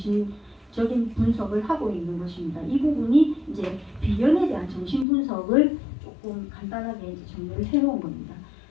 분석을 하고 있는 것입니다. 이 부분이 이제 비견에 대한 정신 분석을 조금 간단하게 이제 정리를 해놓은 겁니다.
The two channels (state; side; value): drops out; right; at 5.1 s